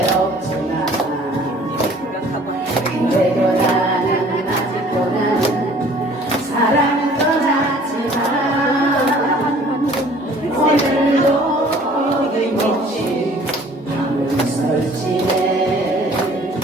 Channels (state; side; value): normal; both; correlation 0.52